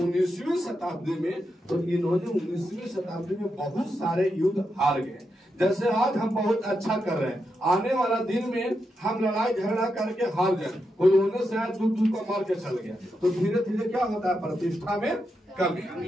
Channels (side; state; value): both; normal; correlation 0.85